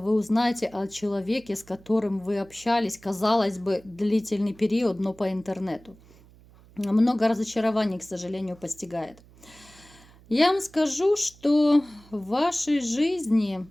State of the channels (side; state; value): right; noise; hum, 25 dB below the sound